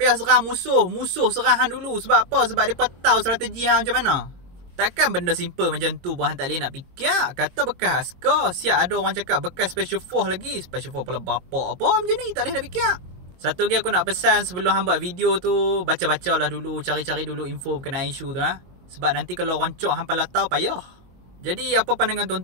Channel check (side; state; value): left; late; 22 ms